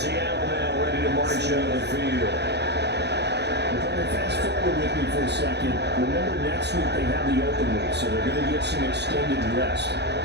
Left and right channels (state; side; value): late; left; 0.49 ms